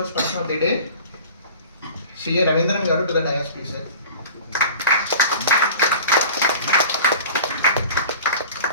person of the day, CA Ravindran garu to the dais, please, sir.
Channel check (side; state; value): both; inverted; correlation -0.40